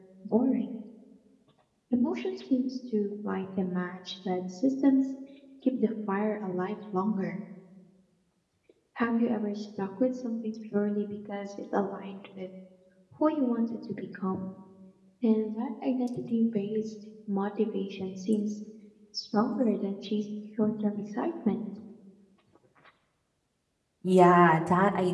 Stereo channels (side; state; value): both; identical; correlation 1.00